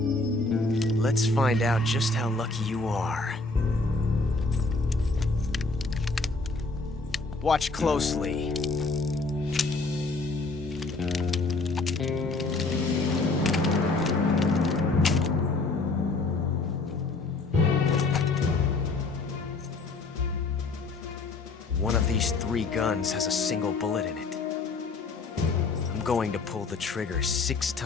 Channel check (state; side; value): quieter; right; 3.5 dB